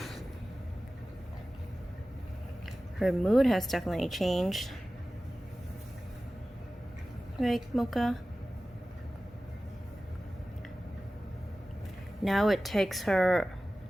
Her mood has definitely changed. Right, Mocha? Now it takes her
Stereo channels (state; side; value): normal; both; correlation 0.96